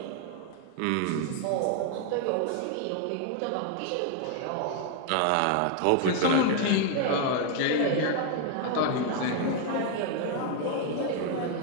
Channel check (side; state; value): both; different; correlation 0.00